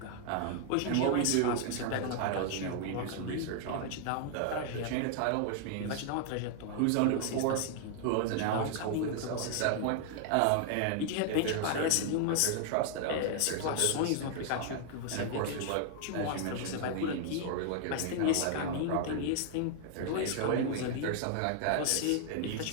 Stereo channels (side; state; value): both; different; correlation 0.00